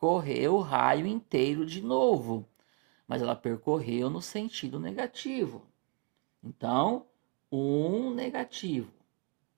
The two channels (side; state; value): left; quieter; 32.4 dB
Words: o raio inteiro de novo. Mas ela percorreu no sentido negativo. Então, 1 negativo.